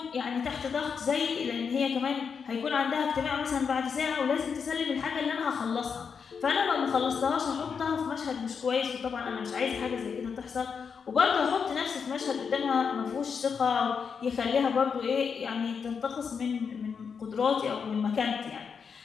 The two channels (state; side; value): quieter; right; 6.2 dB